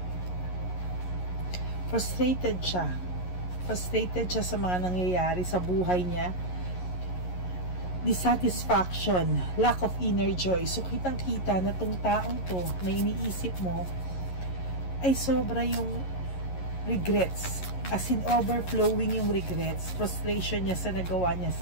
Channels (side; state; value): right; late; 11 ms